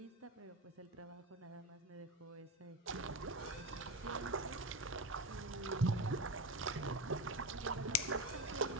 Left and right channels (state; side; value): normal; both; correlation 0.20